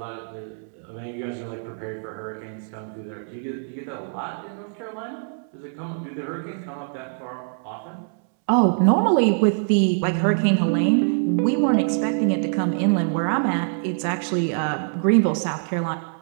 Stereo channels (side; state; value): left; silent; 63 dB below the other